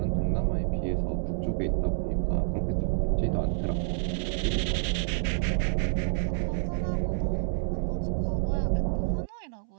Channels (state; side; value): silent; left; 59 dB below the other